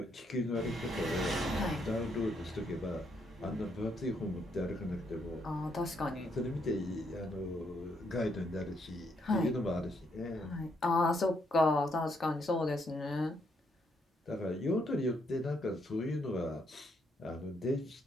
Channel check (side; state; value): both; normal; correlation 0.74